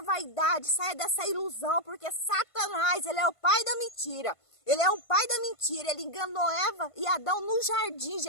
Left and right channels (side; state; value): right; late; 1.5 ms